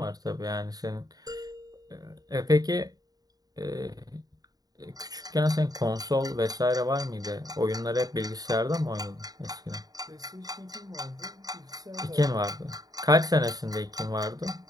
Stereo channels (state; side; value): late; left; 0.18 ms